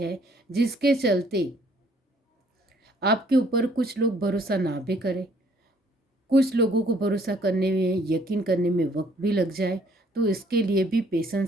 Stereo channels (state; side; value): normal; both; correlation 0.62